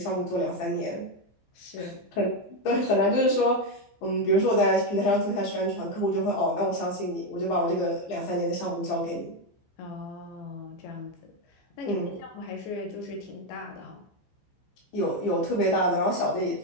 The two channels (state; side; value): late; right; 15 ms